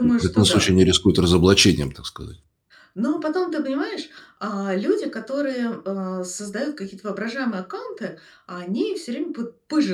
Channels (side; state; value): both; identical; correlation 1.00